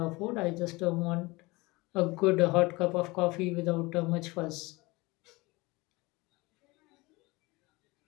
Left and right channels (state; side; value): quieter; right; 23.2 dB